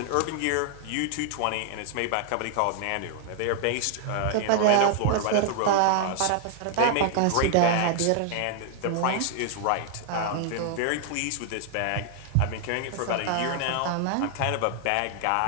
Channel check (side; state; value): both; different; correlation 0.00